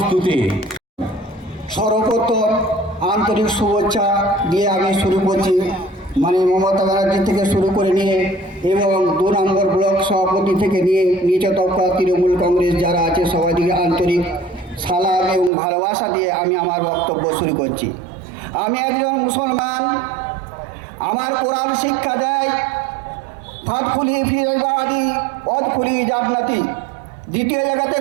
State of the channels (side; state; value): left; drops out; at 15.5 s